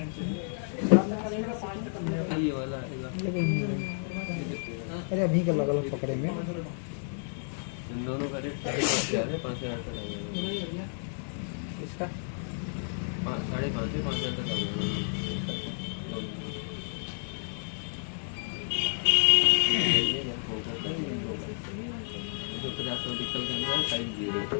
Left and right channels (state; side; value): silent; right; digital silence